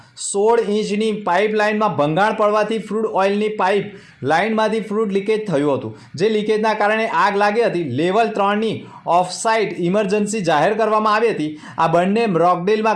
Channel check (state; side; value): identical; both; correlation 1.00